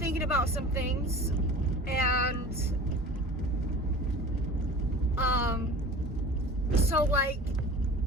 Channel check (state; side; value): normal; both; correlation 0.39